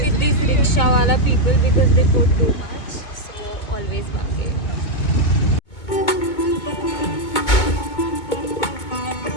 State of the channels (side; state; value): right; late; 2.2 ms